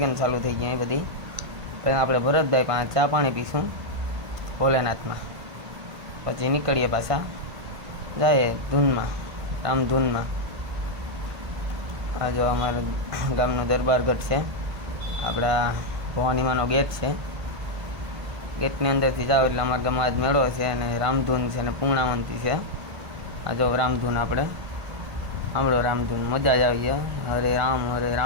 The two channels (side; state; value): left; late; 1.5 ms